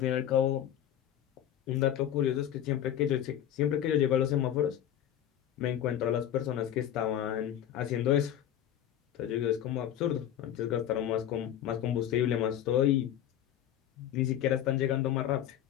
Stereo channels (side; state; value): right; quieter; 10.9 dB